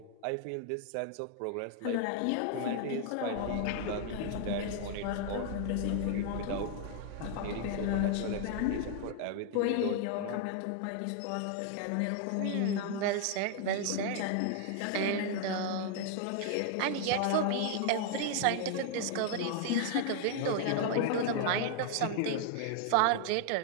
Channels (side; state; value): both; different; correlation 0.00